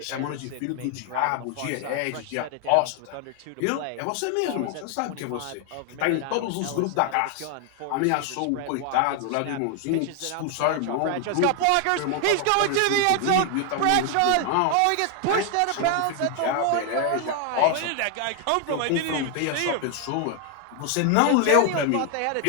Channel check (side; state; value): both; different; correlation 0.01